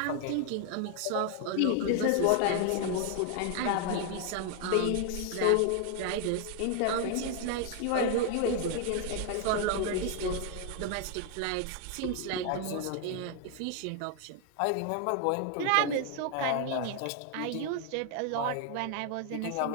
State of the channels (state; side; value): different; both; correlation 0.00